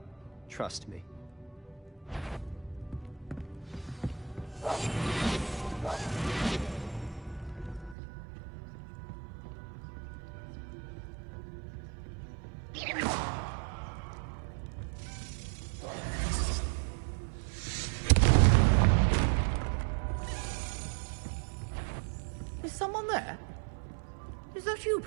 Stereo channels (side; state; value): left; drops out; at 8.0 s